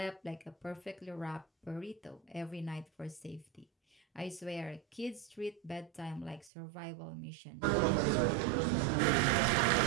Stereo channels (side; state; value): left; drops out; at 6.5 s